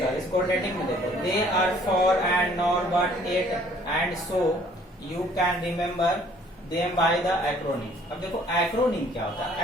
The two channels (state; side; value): normal; both; correlation 0.58